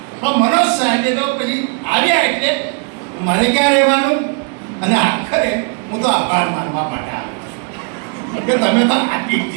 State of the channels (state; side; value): quieter; left; 37.1 dB